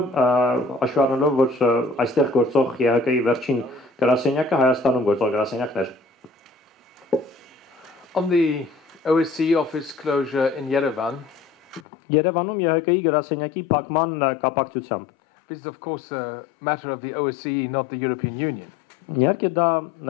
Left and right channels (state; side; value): drops out; right; at 11.9 s